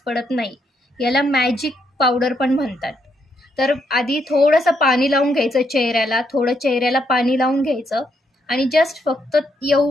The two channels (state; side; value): normal; both; correlation 0.77